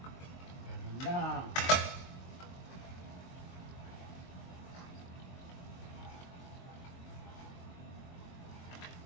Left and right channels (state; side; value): late; right; 22 ms